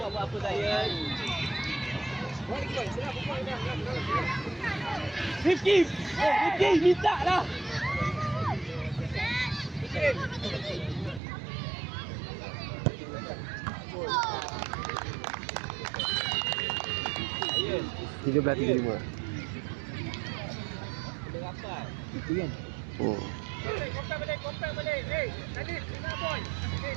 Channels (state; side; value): drops out; left; at 11.2 s